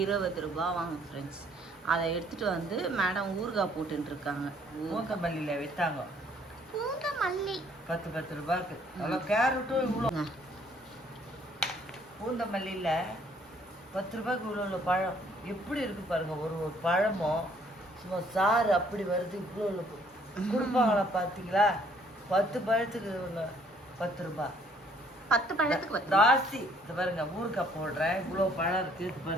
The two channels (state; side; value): normal; both; correlation 0.63